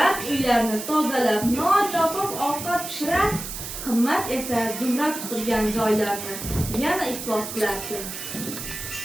uylarni tozalab, non topib, ovqat pishirar. Qimmat esa Zumrad supurgan joylarni yana iflos qilardi.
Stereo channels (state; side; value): noise; right; hiss, 8 dB below the sound